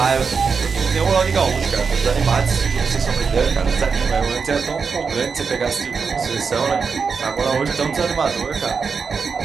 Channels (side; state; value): left; quieter; 5.5 dB